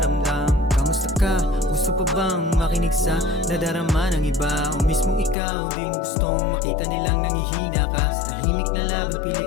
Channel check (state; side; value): drops out; right; at 5.4 s